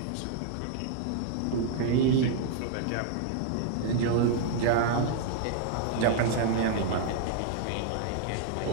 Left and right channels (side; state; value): both; different; correlation -0.01